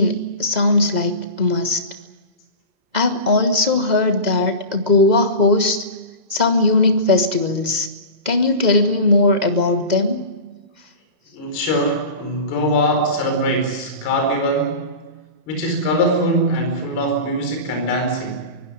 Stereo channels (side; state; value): left; late; 2.0 ms